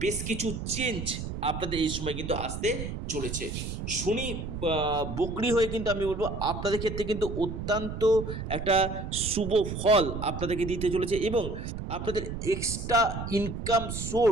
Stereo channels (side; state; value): right; noise; rumble, 6 dB below the sound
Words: বেশ কিছু চেঞ্জ আপনাদের এই সময় কিন্তু আসতে চলেছে। শনি বকরি হয়ে কিন্তু আমি বলবো আপনাদের ক্ষেত্রে কিন্তু অত্যন্ত একটা শুভ ফল আপনাদেরকে দিতে চলেছে। এবং আপনাদের এক্সট্রা ইনকাম